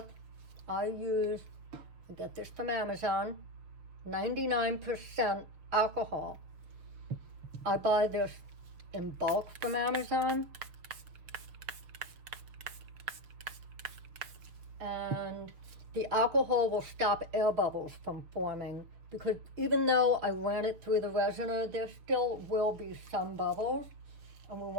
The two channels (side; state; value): left; late; 6.3 ms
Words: I get this from Amazon, 99% alcohol. I buy this in bulk from Amazon. And the alcohol will stop air bubbles from forming, because even though I ran it through the resiner, there still will be some bubbles, and we